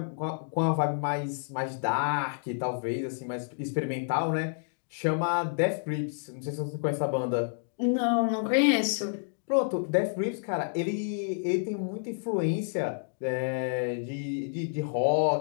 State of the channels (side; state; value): right; silent; digital silence